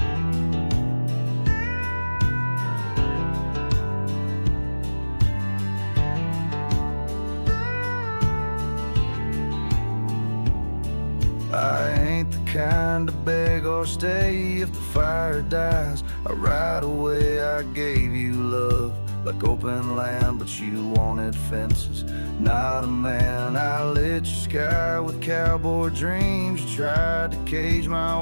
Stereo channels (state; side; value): inverted; both; correlation -1.00